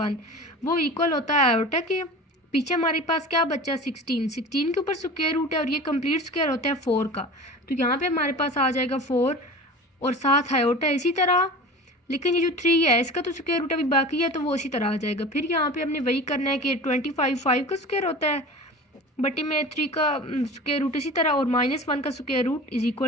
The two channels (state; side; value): normal; both; correlation 0.36